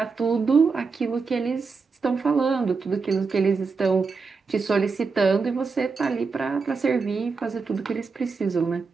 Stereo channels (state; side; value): quieter; left; 4.8 dB